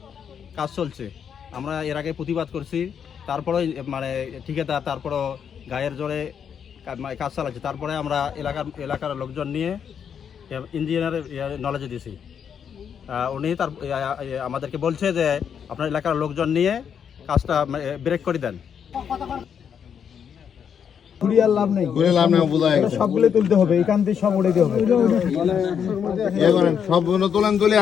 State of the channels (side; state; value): right; quieter; 7.7 dB